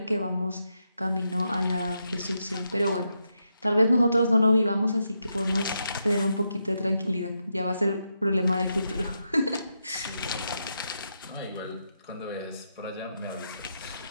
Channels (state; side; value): inverted; both; correlation -0.83